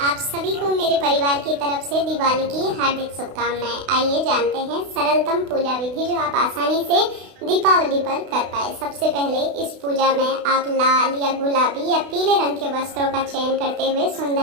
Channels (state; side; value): late; left; 32 ms